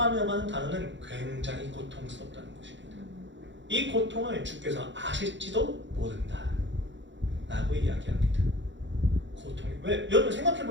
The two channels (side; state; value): left; late; 0.54 ms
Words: 하는 단어는 굉장히 고통스럽다는 것입니다. 이 고통을 주께서 아실지도 모른다 라고 이야기합니다. 고통이 왜? 여러분 생각해